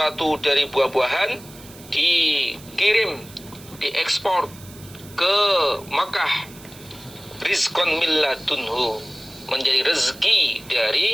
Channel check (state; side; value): noise; right; hiss, 20 dB below the sound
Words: dari buah-buahan dikirim, diekspor ke Makkah. Rizqan min ladunhu, menjadi rezeki